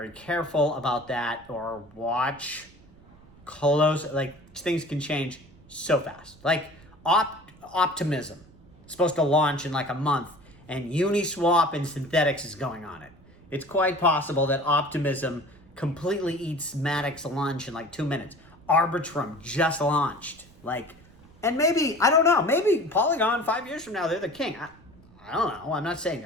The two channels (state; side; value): noise; right; rumble, 25 dB below the sound